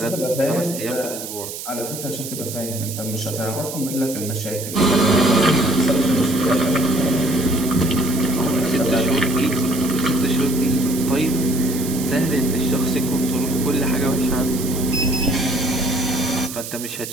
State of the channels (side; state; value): right; noise; hiss, 9 dB below the sound